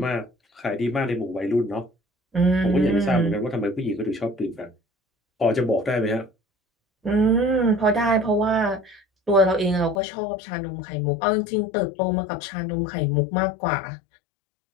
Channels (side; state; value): right; drops out; at 10.0 s